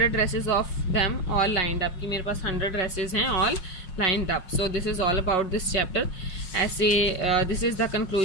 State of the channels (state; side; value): late; right; 5.5 ms